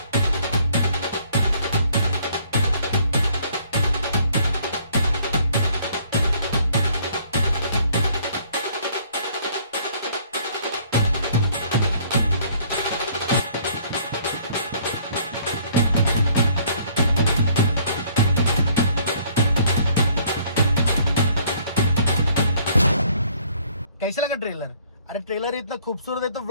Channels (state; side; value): inverted; both; correlation -0.60